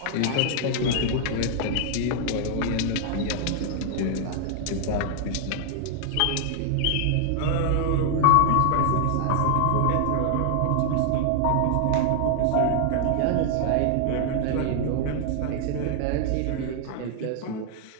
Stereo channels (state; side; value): different; both; correlation 0.00